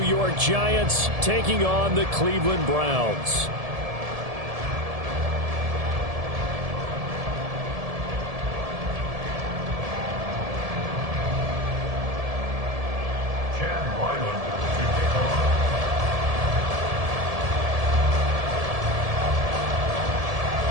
York Giants taking on the Cleveland Browns.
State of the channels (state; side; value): late; left; 1.7 ms